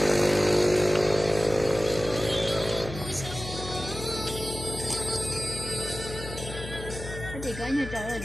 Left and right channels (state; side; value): noise; left; hum, 10 dB below the sound